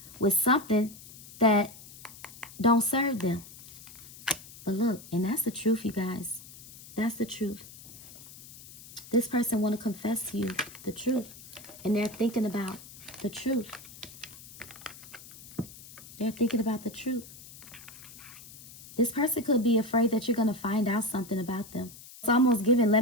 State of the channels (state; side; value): noise; left; hiss, 17 dB below the sound